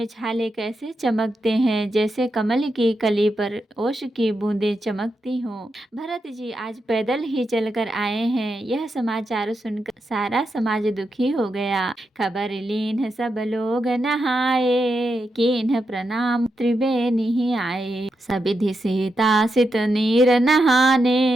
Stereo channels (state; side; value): normal; both; correlation 0.86